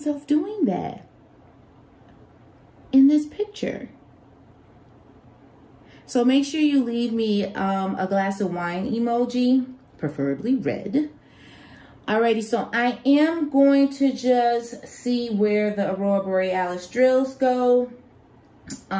doing that in this picture. So make sure you leave me a glass of wine emoji, preferably red. Alrighty, so I am going to just see where the Aurora Borealis drills go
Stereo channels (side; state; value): both; identical; correlation 1.00